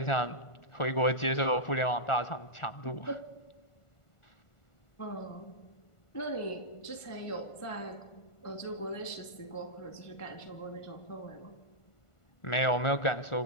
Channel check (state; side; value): late; right; 1.5 ms